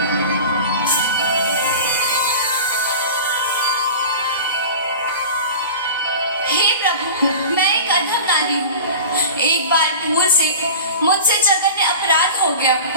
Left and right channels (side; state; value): both; inverted; correlation -0.35